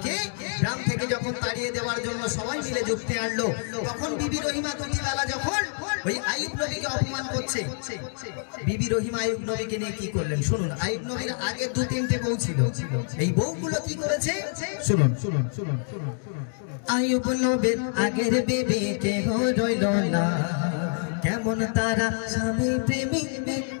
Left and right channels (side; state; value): right; silent; digital silence